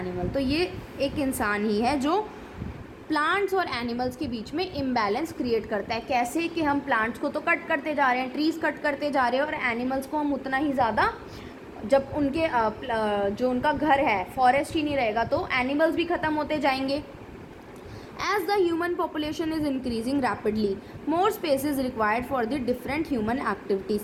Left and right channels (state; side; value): identical; both; correlation 1.00